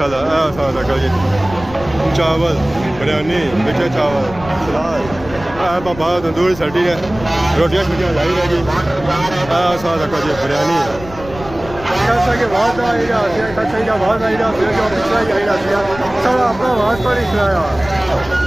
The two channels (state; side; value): noise; left; rumble, 15 dB below the sound